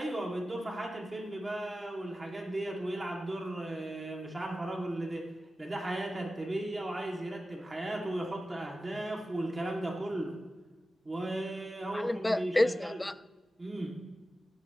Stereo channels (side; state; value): both; normal; correlation 0.94